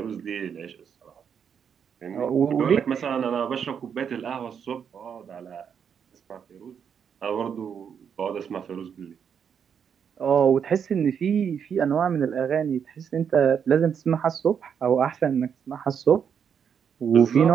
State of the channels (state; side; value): quieter; left; 7.5 dB